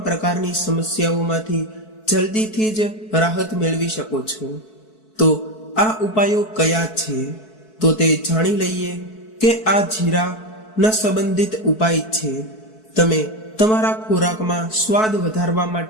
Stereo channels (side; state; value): right; late; 4.6 ms